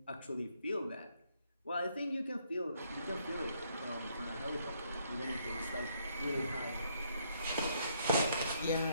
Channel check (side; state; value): both; inverted; correlation -0.71